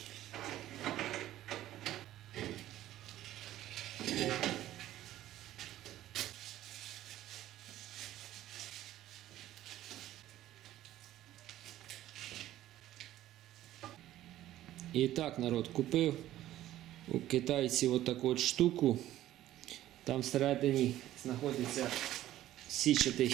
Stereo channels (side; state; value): left; quieter; 13.8 dB